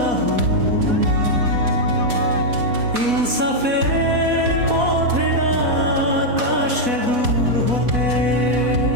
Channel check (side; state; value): left; late; 4.1 ms